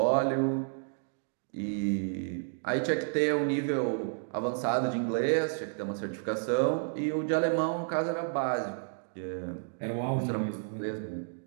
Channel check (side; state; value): left; silent; digital silence